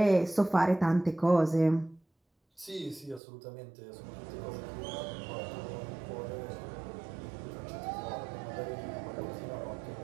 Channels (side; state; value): left; drops out; at 3.2 s